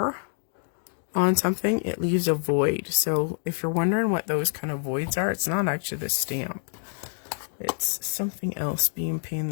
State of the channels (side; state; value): right; silent; 60 dB below the other